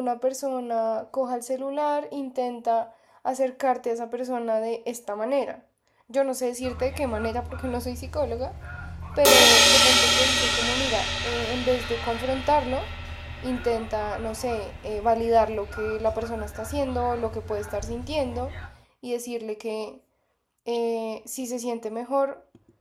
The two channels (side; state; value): both; identical; correlation 1.00